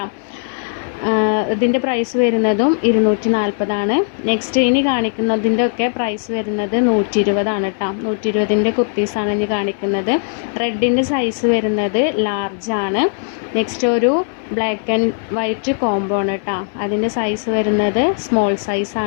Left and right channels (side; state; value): right; silent; digital silence